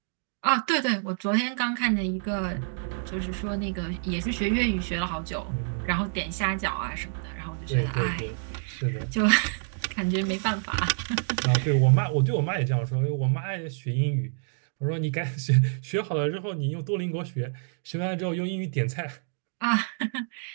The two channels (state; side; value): silent; left; digital silence